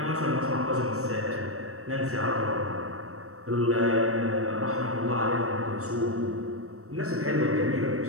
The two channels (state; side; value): late; left; 0.64 ms